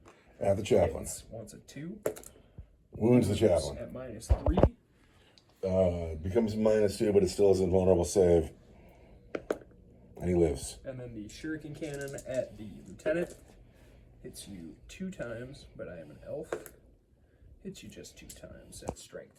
At the chaplain. Wants a 2. Wounds the chaplain. At minus 3. Becomes minus 2, but it still is a vulnerable save. And he lives. And then the shuriken cannon at the lieutenant hits you 2 times, but I am an elf. Hits you just 2 times at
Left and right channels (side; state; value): both; identical; correlation 1.00